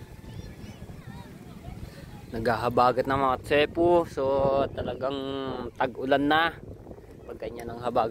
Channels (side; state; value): both; identical; correlation 1.00